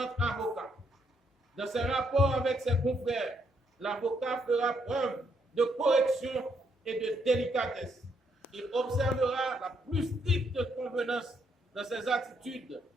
avocats. Dans ses rapports avec ses confrères, l'avocat fera preuve de correction et de délicatesse. Il observera la plus stricte convenance dans ses attitudes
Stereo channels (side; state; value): both; normal; correlation 0.74